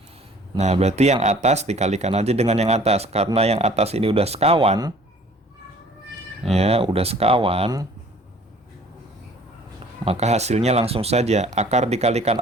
Nah, berarti yang atas dikalikan aja dengan yang atas. Karena yang atas ini udah sekawan. Ya, udah sekawan. Maka hasilnya langsung saja. Akar dikalikan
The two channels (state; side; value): normal; both; correlation 0.52